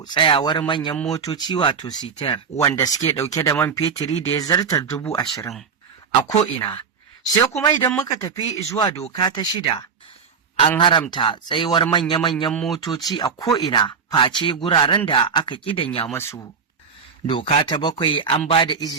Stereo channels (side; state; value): left; quieter; 6.1 dB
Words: tsayawar manyan motoci wato sitar wanda suke ɗauke da man fetiri da ya zartar 20,000 a ko'ina. Sai kuma idan muka tafi zuwa doka ta 6, an haramta tsayuwar manya-manyan motoci a ko'ina face guraren da aka ƙidanya masu. Doka ta 7, an ba da